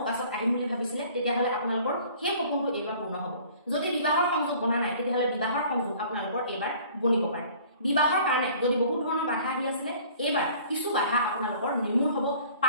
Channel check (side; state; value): both; inverted; correlation -0.51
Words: আহিম বুলি ভাবিছিলে তেতিয়াহ'লে আপোনালোকৰ সেই সপোনটো এইবাৰ পূৰ্ণ হ'ব যদি বিবাহৰ সংযোগ বনা নাই তেতিয়াহ'লে বিবাহৰ সংযোগ আপোনালোকৰ এইবাৰ বনিব পাৰে বিবাহৰ কাৰণে যদি বহুত ধৰণৰ বাধা আহি আছিলে এইবাৰ কিছু বাধা আপোনালোকৰ নিৰ্মূল হ'ব